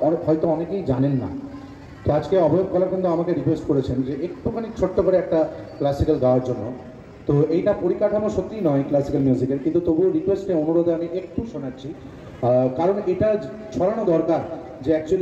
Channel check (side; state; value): both; identical; correlation 1.00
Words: হয়তো অনেকেই জানেন না। তো আজকে অভয় কলা কিন্তু আমাকে রিকোয়েস্ট করেছেন যে একটুখানি ছোট্ট করে একটা ক্লাসিক্যাল গাওয়ার জন্য। তো এইটা পরিকাঠামো সত্যিই নয় ক্লাসিক্যাল মিউজিকের, কিন্তু তবুও রিকোয়েস্টে অনুরোধে আমি একটু শোনাচ্ছি, কারণ এটা ছড়ানো দরকার যে